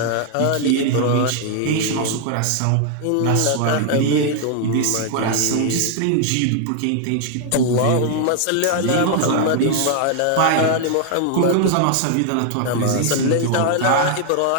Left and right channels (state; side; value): different; both; correlation 0.00